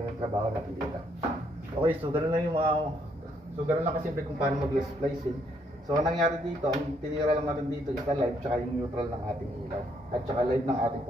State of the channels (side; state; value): both; normal; correlation 0.70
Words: yung trabaho natin dito. Okay, so ganoon lang yung ganoon lang kasi kung paano mag-splicing. So, ang nangyari dito, ang tinira lang natin dito is live tsaka yung neutral ng ating ilaw. At tsaka live ng ating